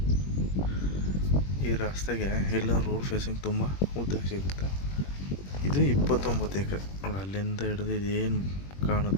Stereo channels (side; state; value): right; late; 21 ms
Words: ಈ ರಸ್ತೆಗೆ ಎಲ್ಲ ರೋಡ್ ಫೇಸಿಂಗ್ ತುಂಬ ಉದ್ದ ಸಿಗುತ್ತೆ. ಇದು 29 ಎಕರೆ ನೋಡಿ. ಅಲ್ಲಿಂದ ಹಿಡಿದು ಇದೇನು